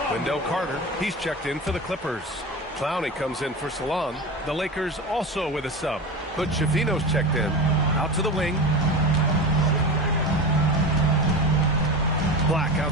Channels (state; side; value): normal; both; correlation 0.27